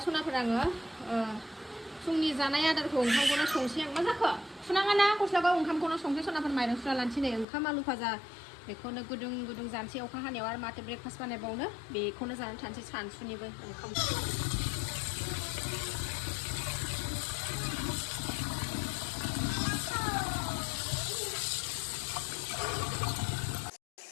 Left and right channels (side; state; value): right; drops out; at 7.5 s